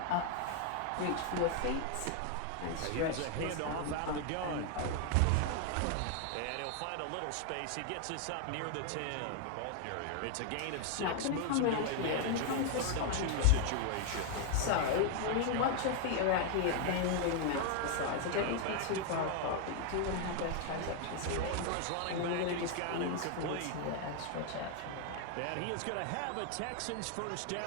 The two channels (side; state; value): both; different; correlation 0.00